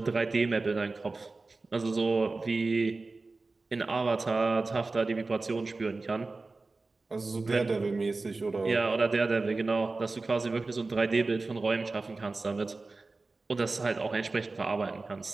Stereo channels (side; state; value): left; quieter; 3.6 dB